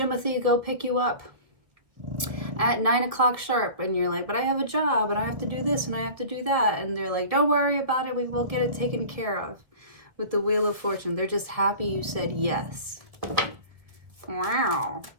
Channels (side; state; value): left; late; 1.4 ms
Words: go pick you up at 9 o'clock sharp, and you're like, but I have a job and I have to do this and I have to do that, and they're like, don't worry about it, we will get it taken care of. With the Wheel of Fortune, they're just happy you said yes. Wow.